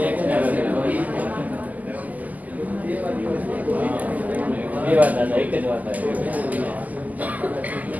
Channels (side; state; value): left; late; 0.079 ms